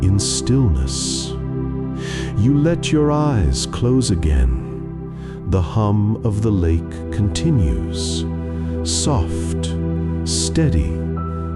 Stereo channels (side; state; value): both; identical; correlation 1.00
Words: stillness. You let your eyes close again. The hum of the lake continues, soft, steady,